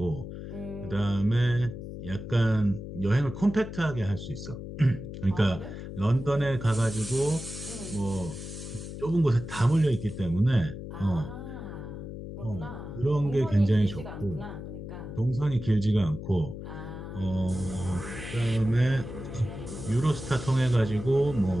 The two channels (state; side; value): noise; left; hum, 9 dB below the sound